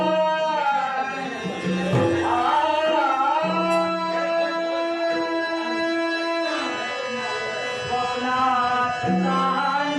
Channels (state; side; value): identical; both; correlation 1.00